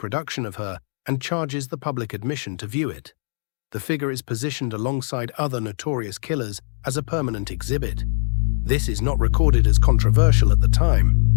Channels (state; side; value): silent; right; digital silence